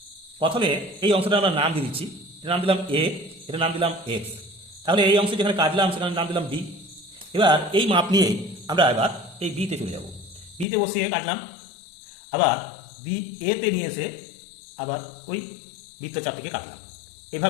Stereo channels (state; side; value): drops out; right; at 10.7 s